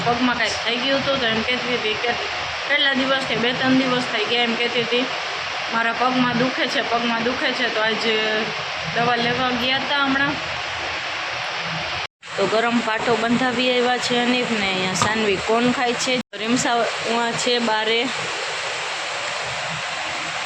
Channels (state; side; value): identical; both; correlation 1.00